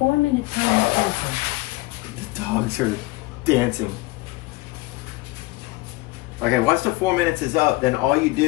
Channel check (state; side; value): quieter; right; 21.3 dB